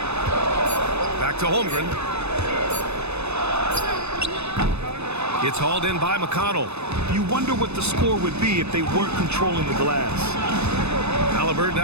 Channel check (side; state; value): left; late; 0.80 ms